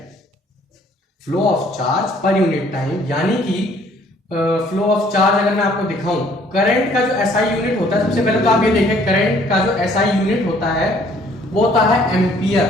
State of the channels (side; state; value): both; normal; correlation 0.60